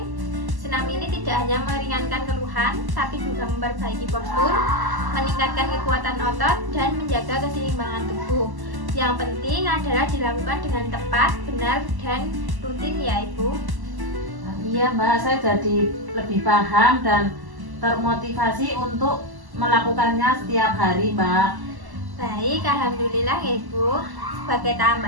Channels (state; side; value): late; left; 1.1 ms